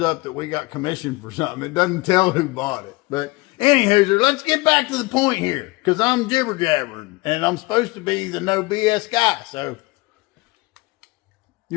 that we got commission for something. It doesn't tell who bought it. But anywho, let's get back to the point here, because I'm jibber jabbering and I'm supposed to be the no BS guy. So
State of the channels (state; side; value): quieter; right; 23.1 dB